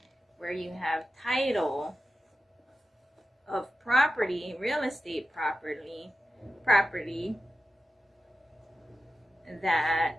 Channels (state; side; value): normal; both; correlation 0.93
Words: where you have title of property, real estate property